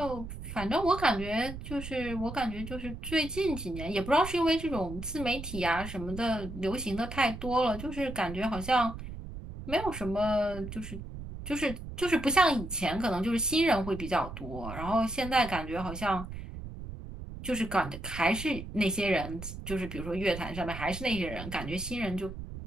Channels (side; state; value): right; noise; rumble, 10 dB below the sound